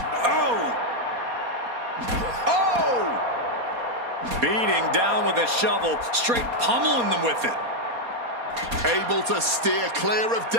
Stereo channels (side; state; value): left; late; 4.2 ms